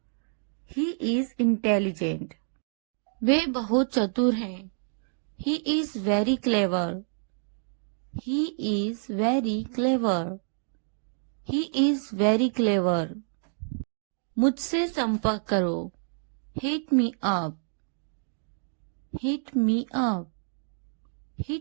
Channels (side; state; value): left; silent; digital silence